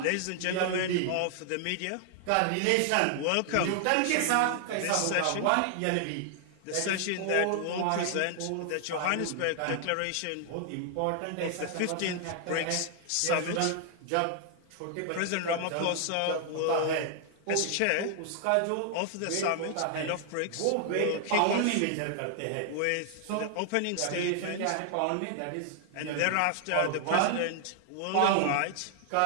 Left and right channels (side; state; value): both; different; correlation 0.00